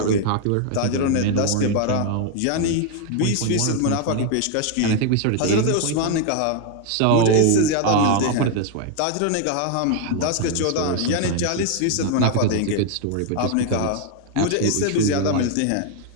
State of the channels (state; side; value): different; both; correlation 0.01